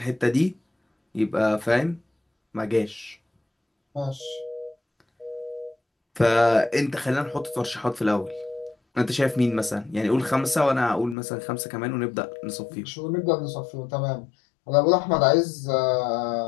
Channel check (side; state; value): right; drops out; at 11.2 s